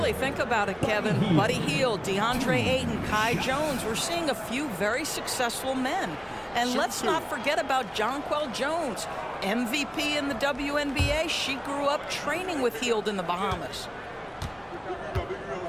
think about it, Kevin. Buddy Hield, DeAndre Ayton, Kai Jones. We're seeing a few very successful men. And let's not forget about Jonquel Jones, MVP in the WNBA. She grew up training with Hield in the Bahamas.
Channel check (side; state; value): both; identical; correlation 1.00